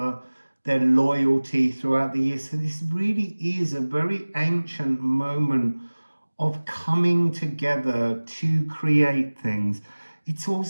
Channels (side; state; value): both; inverted; correlation -1.00